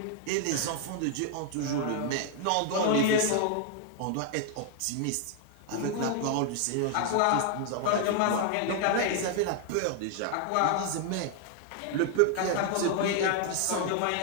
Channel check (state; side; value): different; both; correlation 0.00